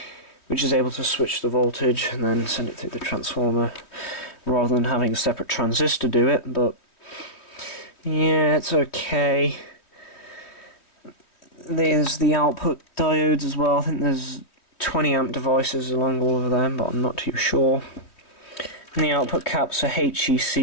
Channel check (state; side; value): late; right; 3.1 ms